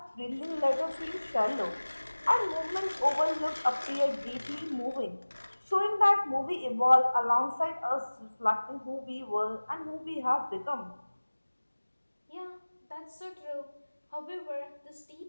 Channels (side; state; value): both; inverted; correlation -1.00